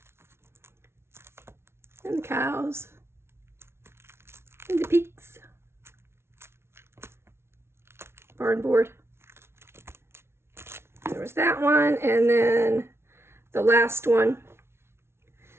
And the cows. And the pigs. Barn board. There was that one, and then the last one,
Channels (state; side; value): late; left; 0.12 ms